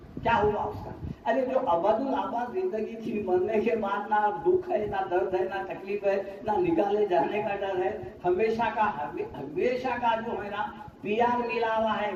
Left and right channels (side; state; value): both; identical; correlation 1.00